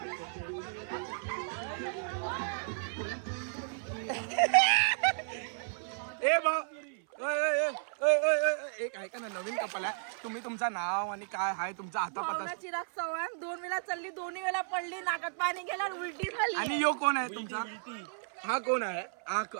ए बा एक ऐका ना नवीन कपल आहे. तुम्ही तुमचं नाव आणि काय आहे तुमचा हातापाता. चिराग चव्हाण 2 वेळा चालली 2 वेळा पडली नाकात पाणी गेला उलटी झाली. आणि यो कोण आहे तुमचा. हा कोण आहे. हा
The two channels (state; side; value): silent; left; 55 dB below the other